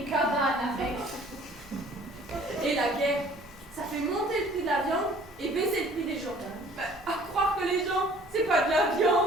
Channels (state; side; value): normal; both; correlation 0.53